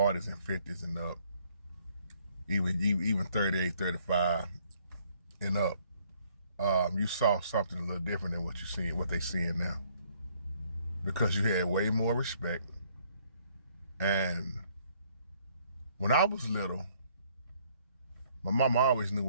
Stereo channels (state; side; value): inverted; both; correlation -0.64